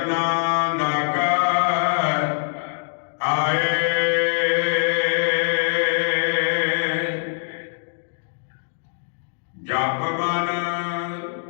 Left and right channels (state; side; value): silent; right; digital silence